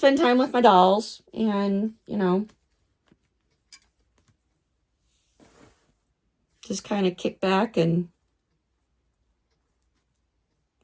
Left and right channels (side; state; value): both; identical; correlation 1.00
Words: time with my dolls and, just kind of kick back and